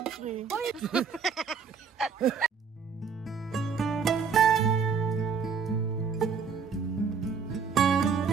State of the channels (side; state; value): left; quieter; 5.9 dB